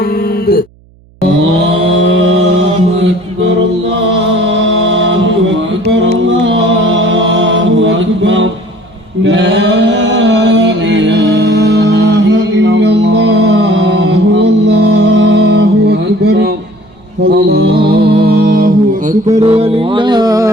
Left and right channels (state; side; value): noise; right; hum, 30 dB below the sound